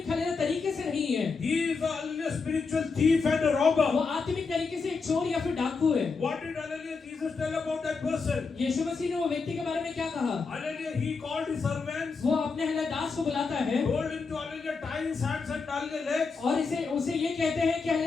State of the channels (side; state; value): right; quieter; 4.7 dB